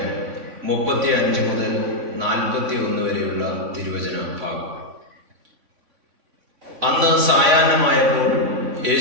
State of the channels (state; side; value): late; left; 3.6 ms